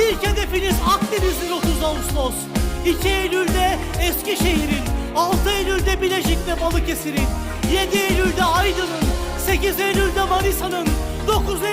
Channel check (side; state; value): both; identical; correlation 1.00